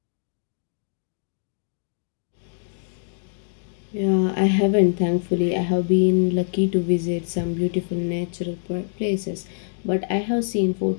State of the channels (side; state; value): right; silent; digital silence